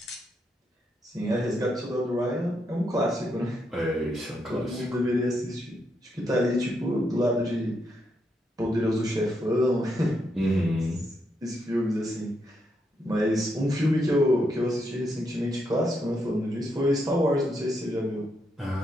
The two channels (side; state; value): both; normal; correlation 0.80